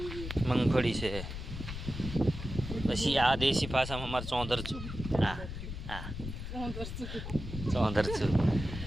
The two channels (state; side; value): noise; left; rumble, 7 dB below the sound